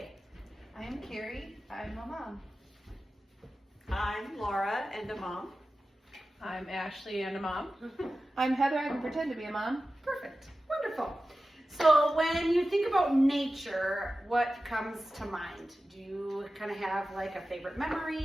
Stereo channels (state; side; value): normal; both; correlation 0.94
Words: I am Carrie. I'm a mom. I'm Laura and a mom. I'm Ashley and a mom. I'm Heather. I can pretend to be a mom. Perfect. Wonderful. So when you think about nature, what comes to mind? Do you kind of have like a favorite